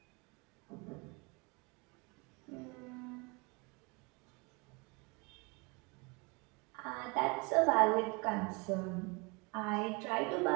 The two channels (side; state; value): left; quieter; 29.0 dB